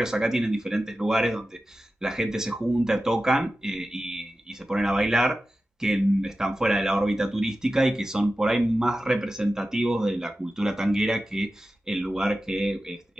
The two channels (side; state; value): both; normal; correlation 0.94